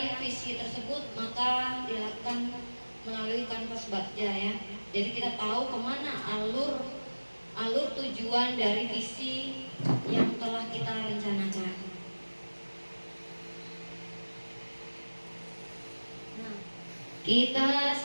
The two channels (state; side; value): inverted; both; correlation -1.00